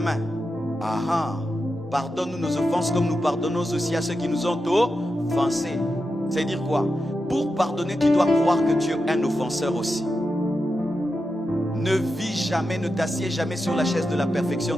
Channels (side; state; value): both; normal; correlation 0.89